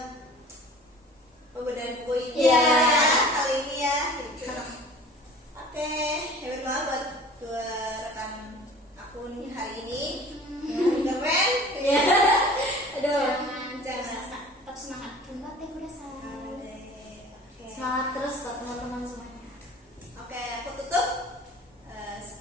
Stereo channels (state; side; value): normal; both; correlation 0.44